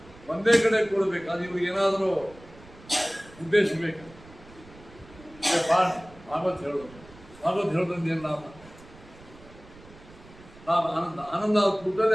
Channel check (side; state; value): right; noise; rumble, 22 dB below the sound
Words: ಒಂದೇ ಕಡೆ ಕೂಡಬೇಕು. ಅದು ಇವ್ರಿಗೆ ಏನಾದರೂ ಉದ್ದೇಶ ಬೇಕು. ಭಾಗವತ್ ಹೇಳೋದು, ಭಾಗವತ್ ಹೇಳೋದ್ರಿಂದ ಏನು ಲಾಭ? ಆನಂದ ಆನಂದ